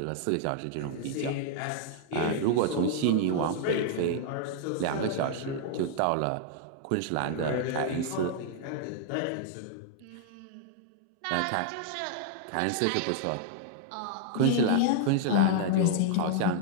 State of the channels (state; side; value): different; both; correlation -0.01